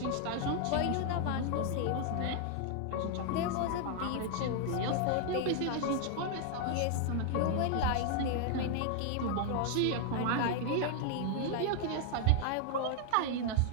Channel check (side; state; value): both; different; correlation 0.00